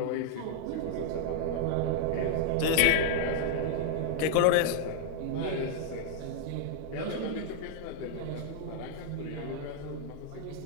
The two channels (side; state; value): both; different; correlation -0.01